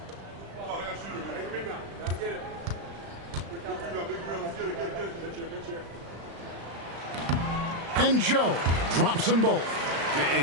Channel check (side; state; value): left; late; 35 ms